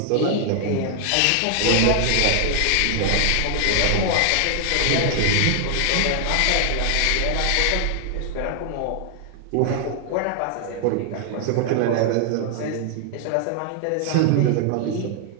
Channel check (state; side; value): different; both; correlation 0.00